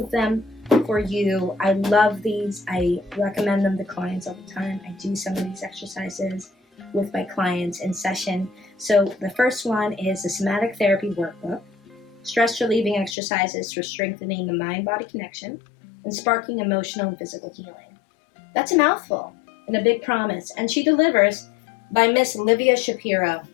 them for you. I love these. I recommend them to clients all the time. I do some of these exercises with my clients in session. So the first one is the Somatic Therapy Workbook, stress relieving exercises for strengthening the mind-body connection and sparking emotional and physical healing. That's a mouthful and a big promise. And she delivers by Miss Livia Shapiro.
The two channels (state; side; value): drops out; right; at 13.2 s